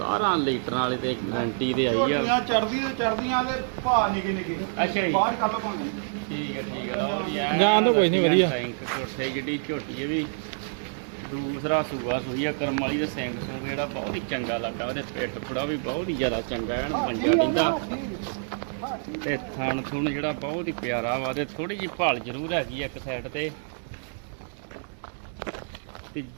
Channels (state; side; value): silent; left; digital silence